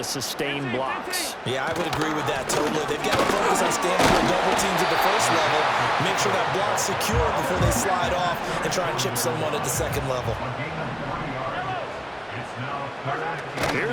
sustain blocks. Yeah, I would agree with that totally. They've got to focus on standing on double teams at the first level, make sure that block's secure before they slide off and try and chip someone at the second level.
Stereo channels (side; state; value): both; identical; correlation 1.00